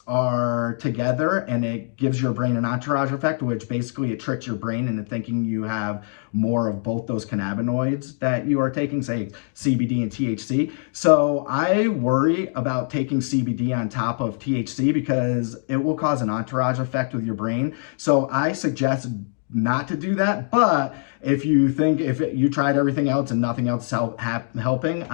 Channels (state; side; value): silent; right; 63 dB below the other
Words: are together and it gives your brain an entourage effect, which basically it tricks your brain into thinking you have more of both those cannabinoids that you are taking, say CBD and THC. So I worry about taking CBD on top of THC because it will cause an entourage effect with your brain. So I suggest not to do that. But if you tried everything else and nothing else helping,